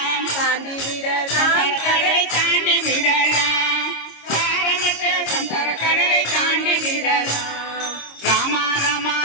தாண்டி விடலாம் கடலை தாண்டி விடலாம், சாரமற்ற சம்சார கடலை தாண்டி விடலாம், ராமா ராமா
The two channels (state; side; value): late; right; 26 ms